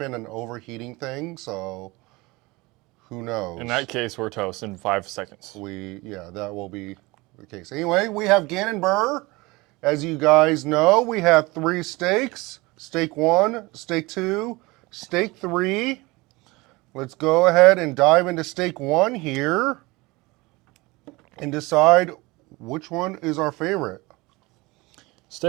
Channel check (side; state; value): left; quieter; 23.1 dB